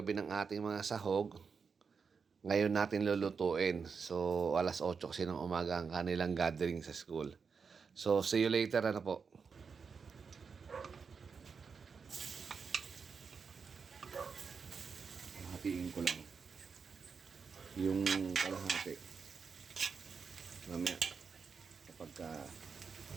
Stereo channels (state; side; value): quieter; left; 5.6 dB